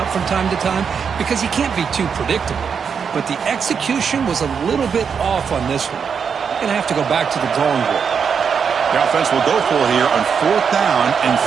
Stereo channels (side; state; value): left; quieter; 6.6 dB